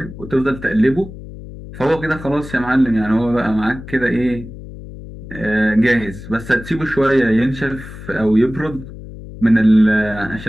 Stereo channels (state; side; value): noise; left; hum, 14 dB below the sound